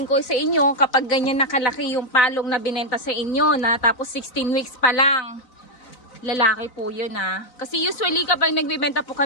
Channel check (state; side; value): late; right; 3.9 ms